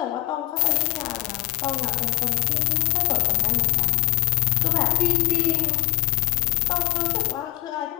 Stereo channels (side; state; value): right; quieter; 17.7 dB